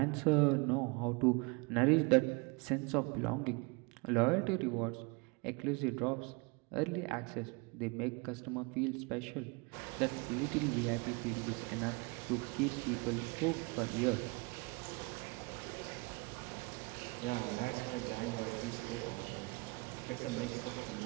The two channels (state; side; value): quieter; left; 28.8 dB